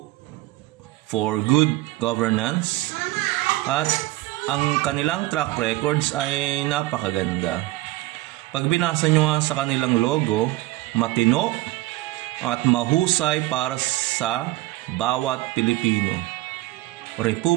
good governance at ang kanilang track records ay napakaganda. Pag binasa nyo nga sa kanilang logo, matino at mahusay para sa bawat Pilipino.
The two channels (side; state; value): left; quieter; 18.2 dB